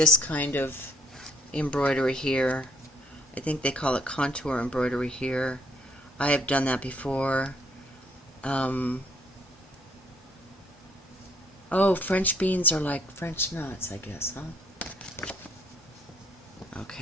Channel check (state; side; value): normal; both; correlation 0.64